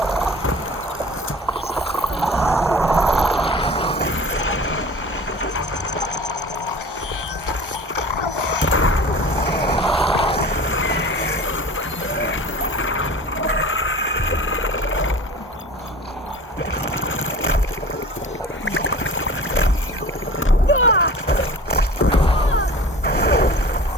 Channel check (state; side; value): normal; both; correlation 0.40